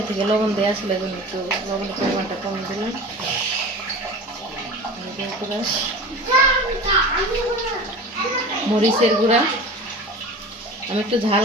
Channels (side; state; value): both; normal; correlation 0.35